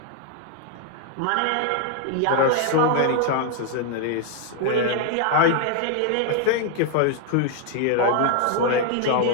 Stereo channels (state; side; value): different; both; correlation 0.00